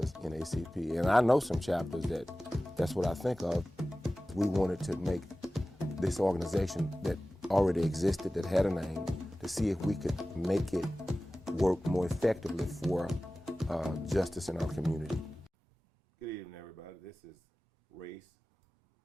in NAACP. And I know some chapters that's what I think of. We wanted to make this organization that already existed, that had a name, to see if we could make it work more effectively for justice in our community. Good evening, everybody. This is Race,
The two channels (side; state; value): both; normal; correlation 0.96